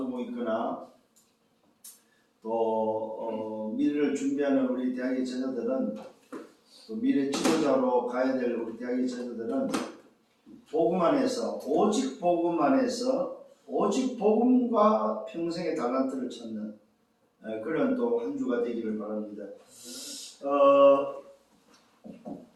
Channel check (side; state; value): both; identical; correlation 1.00